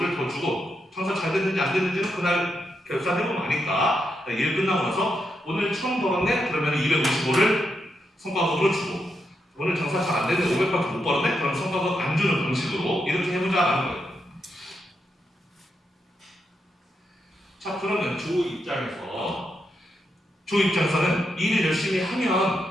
더 주고 장사 잘 됐는지 안 됐는지는 그날 결산해보면 아니까 일 끝나고 나서 오늘 1000 벌었네? 그러면 255를 성과급으로 주고 오늘 장사 잘 안 됐는데 500밖에 못 벌었네? 그럼 성과급 안 주는 방식으로 이렇게 해보자라는 거예요. 자 그러면 조 입장에서는 일을 열심히 하면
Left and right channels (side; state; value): both; normal; correlation 0.83